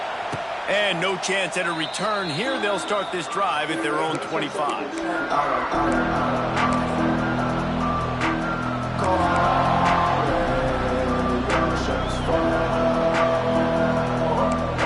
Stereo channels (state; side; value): identical; both; correlation 1.00